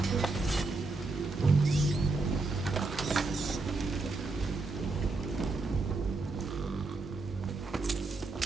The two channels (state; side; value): quieter; left; 3.5 dB